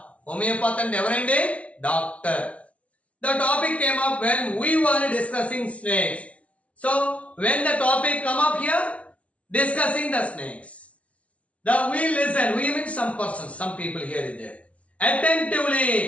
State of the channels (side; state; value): right; late; 0.064 ms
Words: అంటే ఎవరండి doctor. The topic came up when we were discussing snakes. So, when the topic come up here, discussing the snakes, we listen. We mean some persons, some people here is there. Attentively,